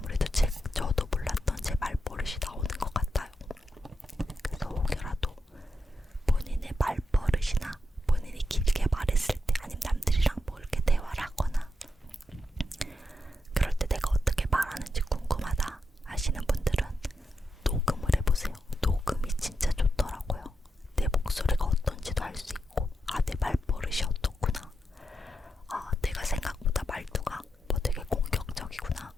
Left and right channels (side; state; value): both; normal; correlation 0.86